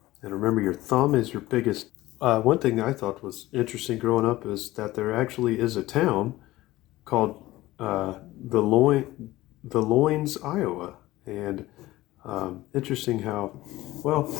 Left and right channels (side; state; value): right; quieter; 17.4 dB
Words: And remember, your thumb is your biggest. One thing I thought was interesting growing up is that there actually is a town called Des Loins, Iowa. And interesting how,